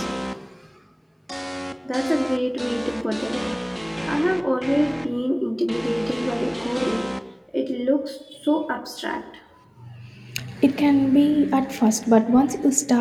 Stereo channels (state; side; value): identical; both; correlation 1.00